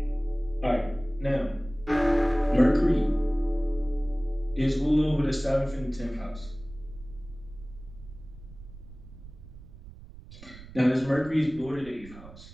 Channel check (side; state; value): right; noise; rumble, 17 dB below the sound